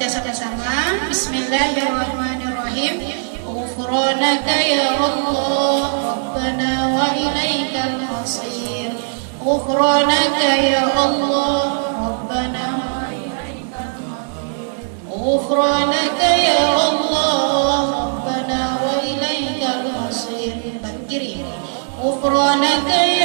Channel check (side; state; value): left; silent; digital silence